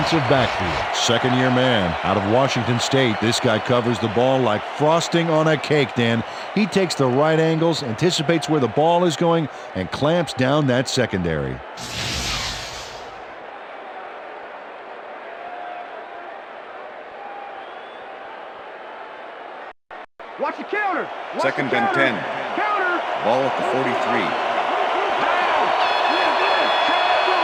backfield. 2nd-year man out of Washington State. This guy covers the ball like frosting on a cake, Dan. He takes the right angles, anticipates where the ball is going, and clamps down that secondary. Watch the counter. 2nd and 10. Ball at the 43.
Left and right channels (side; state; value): both; identical; correlation 1.00